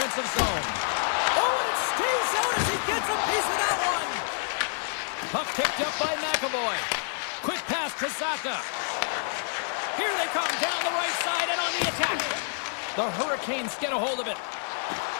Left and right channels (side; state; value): right; silent; 59 dB below the other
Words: zone. Oh, and it stays out as he gets a piece of that one. Puck picked up by McAvoy. Quick pass to Saka. Here they come down the right side and on the attack. The Hurricanes get a hold of it.